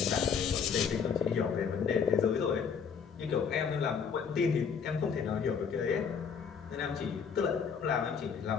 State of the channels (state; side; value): quieter; right; 6.6 dB